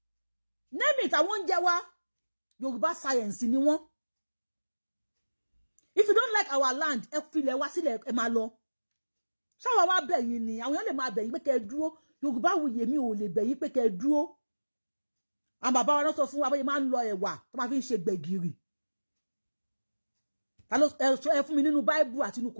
name it àwọn oúnjẹ wa Yorùbá science ni wọ́n if you don't like our land ẹ filẹ̀ wá sílẹ̀ ẹ máa lọ ṣáwa wá bẹ̀ yín ni àwọn èèyàn lè máa bẹ̀ yín pé kẹ́ ẹ dúró Yorùbáwùyí mi ò lè bẹ̀ yín pé kẹ́ ẹ dúró àwọn bàbá wa náà sọ fún wa bóyá máa ń lọ ẹ̀wà tó máa fi ń ṣe gbẹ̀gìrì ẹ fún mi nínú Bible àti nínú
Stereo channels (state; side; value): inverted; both; correlation -1.00